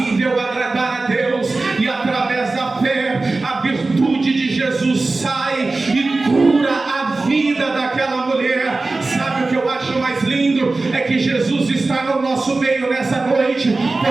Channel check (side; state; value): left; quieter; 3.4 dB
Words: agradar a Deus, e através da fé a virtude de Jesus sai e cura a vida daquela mulher. Sabe o que eu acho mais lindo? É que Jesus está no nosso meio nessa noite,